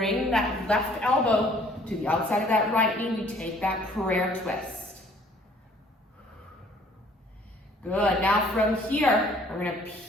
that left elbow to the outside of that right knee. We take that prayer twist. Good. Now from here, we're going to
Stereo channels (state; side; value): normal; both; correlation 0.57